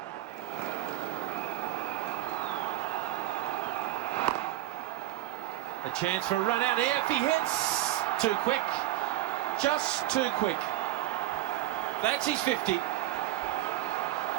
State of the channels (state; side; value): quieter; left; 14.5 dB